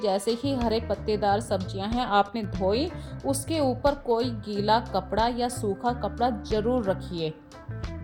ही हरे पत्तेदार सब्जियां हैं आपने धोई, उसके ऊपर कोई गीला कपड़ा या सूखा कपड़ा ज़रूर रखिए।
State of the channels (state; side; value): identical; both; correlation 1.00